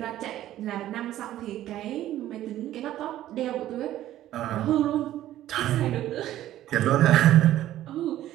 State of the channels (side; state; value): left; quieter; 13.4 dB